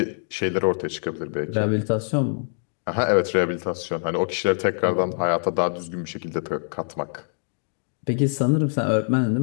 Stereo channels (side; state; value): right; silent; digital silence